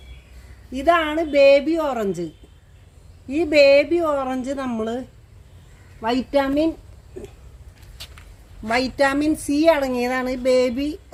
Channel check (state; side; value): identical; both; correlation 1.00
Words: ഇതാണ് ബേബി ഓറഞ്ച്. ഈ ബേബി ഓറഞ്ച് നമ്മൾ വൈറ്റാമിൻ സി അടങ്ങിയതാണ് ഈ ബേബി